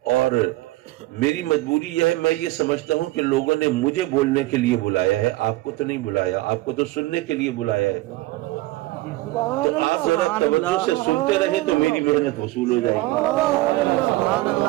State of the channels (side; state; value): left; quieter; 18.9 dB